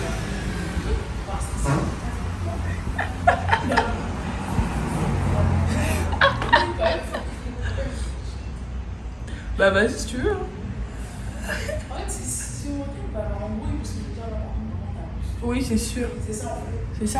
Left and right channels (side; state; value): both; identical; correlation 1.00